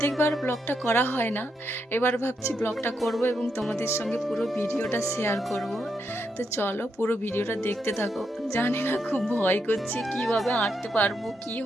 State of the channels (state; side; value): normal; both; correlation 0.81